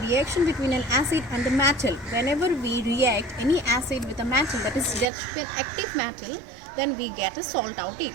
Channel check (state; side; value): drops out; left; at 5.1 s